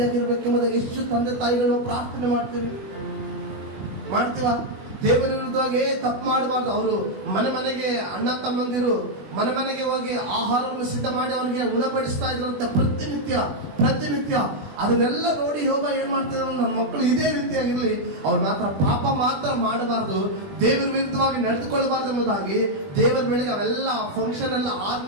ಎಷ್ಟು ತಂದೆ ತಾಯಿಗಳು ಪ್ರಾರ್ಥನೆ ಮಾಡ್ತೀವ. ದೇವರ ವಿರುದ್ಧವಾಗಿ ತಪ್ಪು ಮಾಡಬಾರ್ದು. ಅವರು ಮನೆಗೆ ಅಣ್ಣ ತಮ್ಮಂದಿರು ಮನೆಗೆ ಹೋಗಿ ಆಹಾರವನ್ನು ಸಿದ್ಧ ಮಾಡಿ ಅವನಿಗೆ ಉಣಬಡಿಸ್ತಾ ಇದ್ರಂತೆ ಪ್ರತಿನಿತ್ಯ. ಅದನ್ನೆಲ್ಲ ನೋಡಿ ಯೋಬ ಏನ್ ಮಾಡ್ತಿದ್ರು? ನನ್ನ ಮಕ್ಕಳು ಇದೇ ರೀತಿಯಾಗಿರ್ಲಿ, ಅವ್ರು ಮಾತ್ರ ಪಾಪ ಮಾತ್ರ ಮಾಡಬಾರ್ದು, ದೇವರ ವಿರುದ್ಧವಾಗಿ ನಡೆದುಕೊಳ್ಳಬಾರ್ದು ಎಂಬುದಾಗಿ ದೇವರ ಬೆಳಿಗ್ಗೆ ಅವೆಲ್ಲ ಫಂಕ್ಷನ್ ಎಲ್ಲ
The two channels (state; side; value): late; left; 20 ms